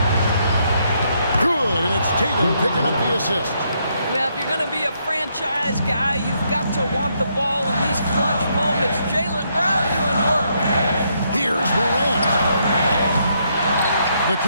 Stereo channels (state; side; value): inverted; both; correlation -0.75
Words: Good, and it's Tatum picking up the assist. Well, if you're going to be a franchise guy, you've got to want the ball in these clutch moments. Jaylen Brown doing work. Here's Morant. The